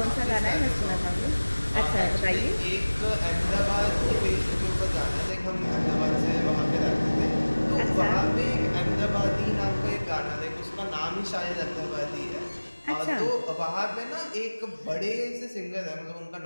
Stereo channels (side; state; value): both; inverted; correlation -1.00